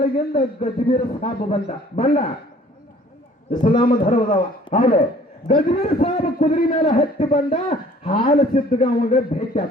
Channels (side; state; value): both; normal; correlation 0.54